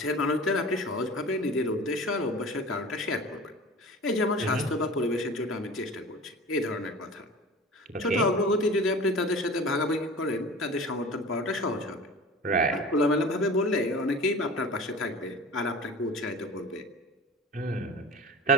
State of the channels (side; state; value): both; normal; correlation 0.38